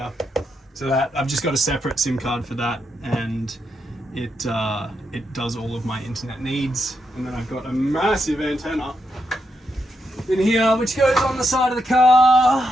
So that I've just got a separate SIM card for that, and it does all of my internet needs. And then I've got a massive antenna in here which goes on the side of the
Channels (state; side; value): normal; both; correlation 0.82